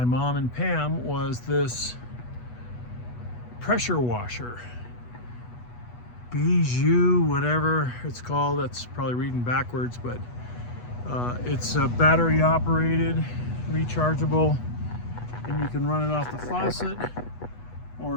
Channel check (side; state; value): right; late; 8.2 ms